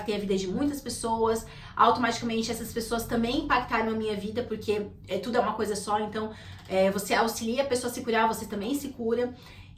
a vida de muitas pessoas, automaticamente essas pessoas também impactaram a minha vida, porque tudo é uma coisa só, então você auxilia a pessoa a se curar, você também se cura.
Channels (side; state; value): both; identical; correlation 1.00